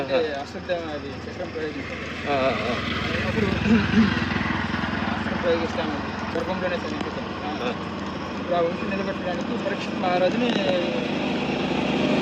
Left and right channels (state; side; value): identical; both; correlation 1.00